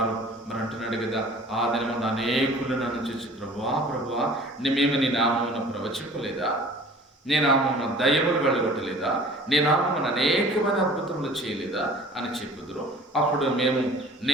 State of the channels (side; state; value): both; normal; correlation 0.47